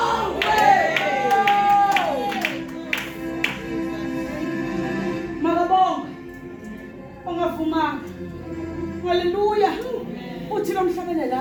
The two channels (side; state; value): both; identical; correlation 1.00